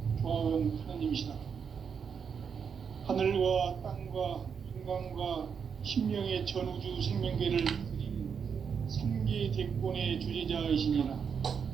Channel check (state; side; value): quieter; left; 6.7 dB